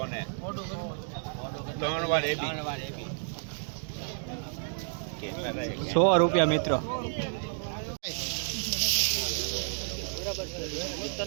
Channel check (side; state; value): left; silent; digital silence